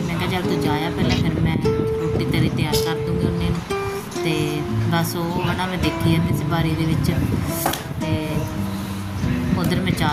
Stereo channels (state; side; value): identical; both; correlation 1.00